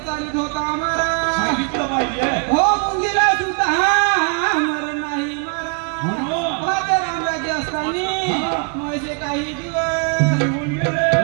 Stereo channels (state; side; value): quieter; left; 38.1 dB